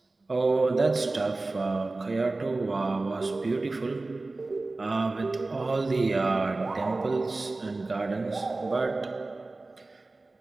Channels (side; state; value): left; quieter; 3.3 dB